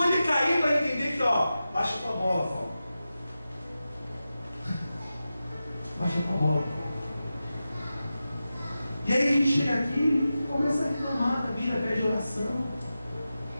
ele cair para entender que, baixa tua bola, Paulo. Baixa tua bola. E aí a gente chega aqui e começa a reclamar da vida, pede oração.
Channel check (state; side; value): inverted; both; correlation -0.93